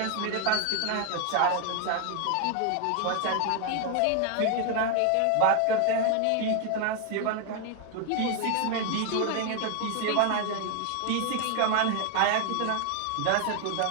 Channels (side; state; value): both; different; correlation 0.01